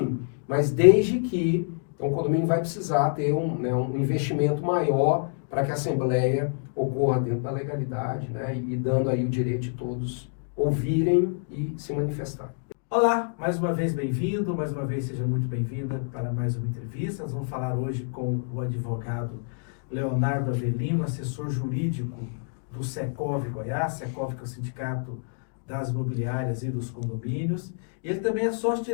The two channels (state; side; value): silent; right; digital silence